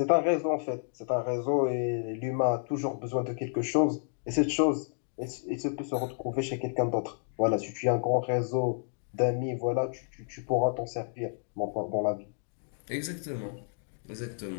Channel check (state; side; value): silent; right; digital silence